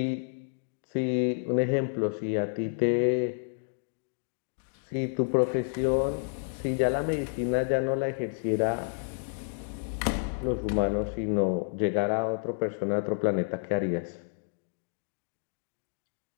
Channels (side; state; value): right; silent; digital silence